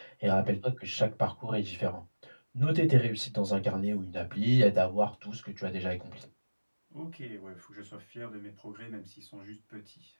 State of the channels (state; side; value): inverted; both; correlation -1.00